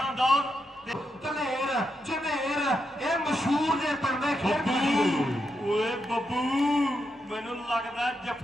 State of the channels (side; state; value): both; normal; correlation 0.83